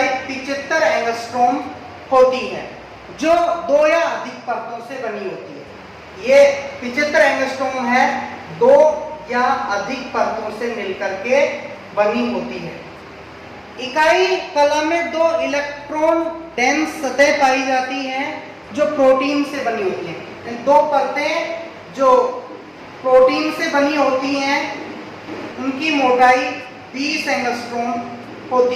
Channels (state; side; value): identical; both; correlation 1.00